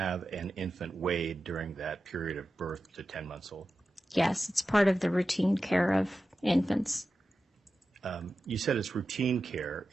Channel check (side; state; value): both; normal; correlation 0.92